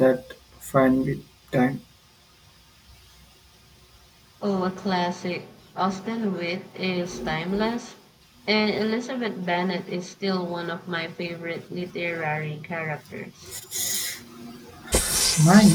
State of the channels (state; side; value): identical; both; correlation 1.00